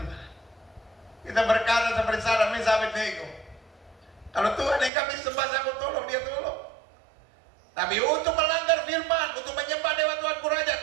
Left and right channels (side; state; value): left; drops out; at 4.9 s